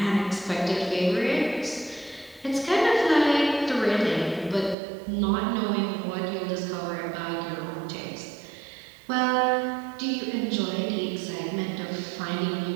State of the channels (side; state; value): left; drops out; at 4.8 s